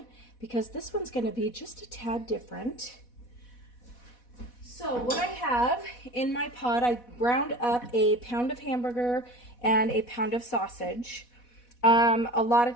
because this one's going to be just a tad different. So what I have in my pot, I ground up a pound of hamburger and a pound of sausage. A lot of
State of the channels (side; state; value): right; late; 4.1 ms